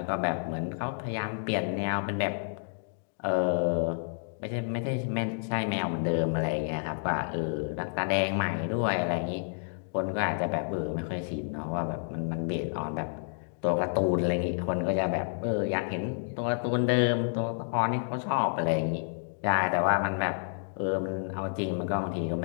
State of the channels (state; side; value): silent; right; digital silence